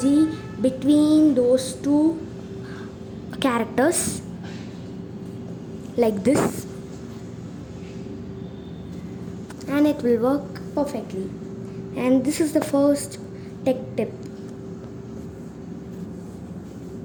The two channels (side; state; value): both; identical; correlation 1.00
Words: between those two characters like this, and it will work perfectly. And this is the first tech tip.